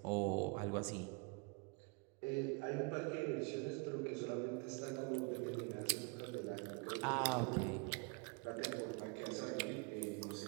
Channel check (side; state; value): left; quieter; 32.1 dB